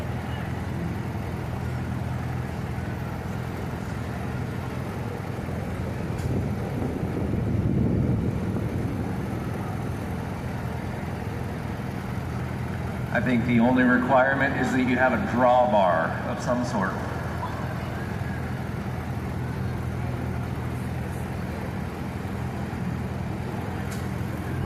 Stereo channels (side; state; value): both; identical; correlation 1.00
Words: I think the only requirement is that you have a drawbar of some sort.